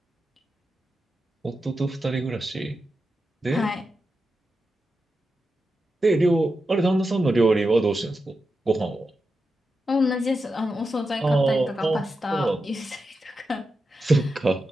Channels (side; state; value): both; normal; correlation 0.89